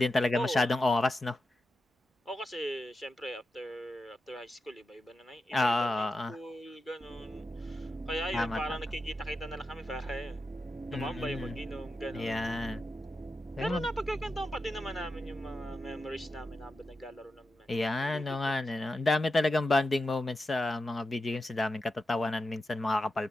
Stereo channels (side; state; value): both; normal; correlation 0.89